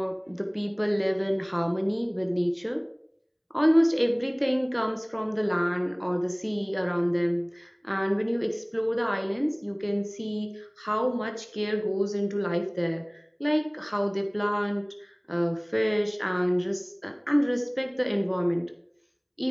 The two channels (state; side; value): identical; both; correlation 1.00